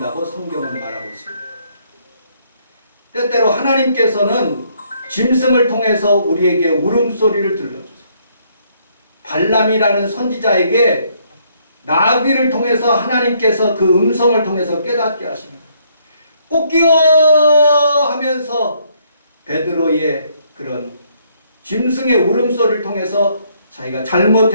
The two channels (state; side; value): inverted; both; correlation -0.68